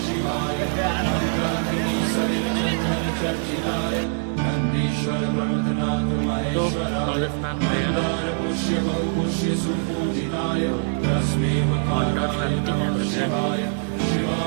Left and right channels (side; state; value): left; silent; 56 dB below the other